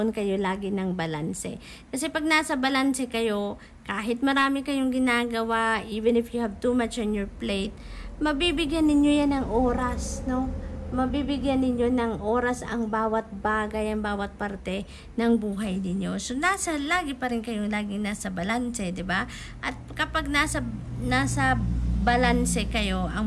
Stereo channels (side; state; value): both; identical; correlation 1.00